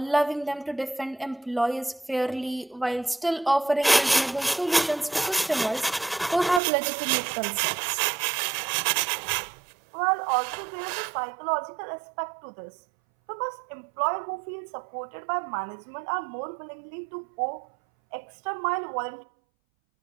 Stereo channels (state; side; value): drops out; left; at 6.6 s